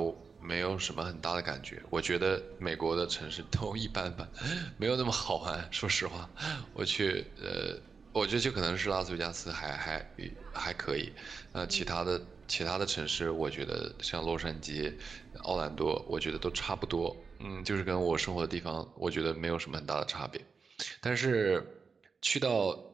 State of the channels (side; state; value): left; quieter; 5.1 dB